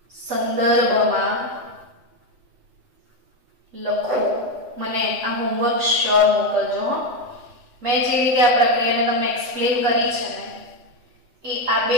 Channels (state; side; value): late; left; 8.0 ms